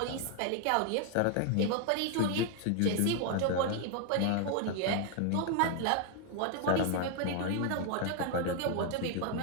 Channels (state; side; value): different; both; correlation 0.00